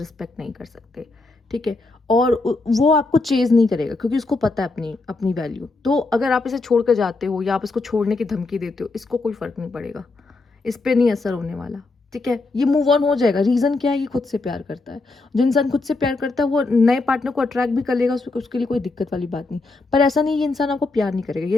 नहीं कर सकते, ठीक है। और वो आपको चेज नहीं करेगा क्योंकि उसको पता है अपनी अपनी वैल्यू। तो अगर आप इसे छोड़ कर जाते हो या आप इसको छोड़ने की धमकी देते हो, इसको कोई फर्क नहीं पड़ेगा, इस पर नहीं असर होने वाला, ठीक है। ये मूव ऑन हो जाएगा। रीज़न क्या है? ये खुद से प्यार करता है। जो इंसान खुद से प्यार करता है वो नए पार्टनर को अट्रैक्ट भी कर लेगा, उसके लिए कोई दिक्कत वाली बात नहीं। पर ऐसा नहीं, ये इंसान आपको प्यार नहीं करेगा। ये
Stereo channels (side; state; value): right; quieter; 3.5 dB